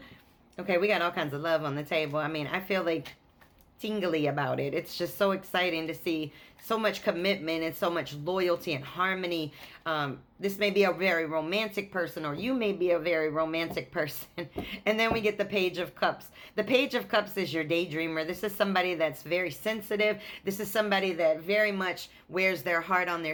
Okay, we got all kinds of love on the table. I mean, I feel like tingly about it. It's just so exciting to see so much commitment and so much loyalty and harmony. This may be a very romantic person, or you may be a very romantic person. And then we get the Page of Cups. The Page of Cups is your daydreamer. This is somebody that's very sensitive. This is somebody that very much wears their heart on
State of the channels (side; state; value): both; identical; correlation 1.00